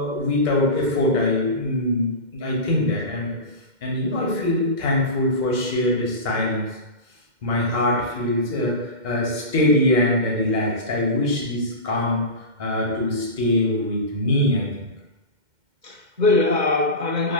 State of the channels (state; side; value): late; left; 2.1 ms